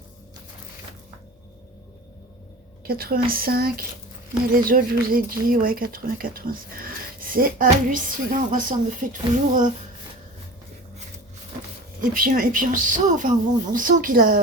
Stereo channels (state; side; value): normal; both; correlation 0.35